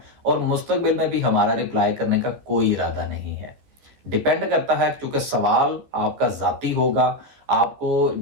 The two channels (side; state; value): left; late; 14 ms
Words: और मुस्तकबिल में भी हमारा रिप्लाई करने का कोई इरादा नहीं है। डिपेंड करता है, क्योंकि सवाल आपका जाती होगा, आपको